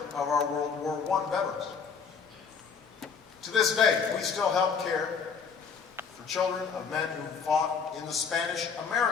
of our World War I veterans. To this day, we still help care for children of men who fought in the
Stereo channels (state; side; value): quieter; right; 5.9 dB